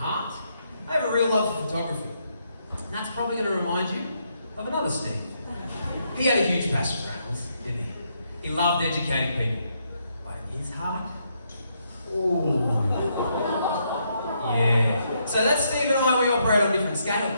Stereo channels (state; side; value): inverted; both; correlation -0.76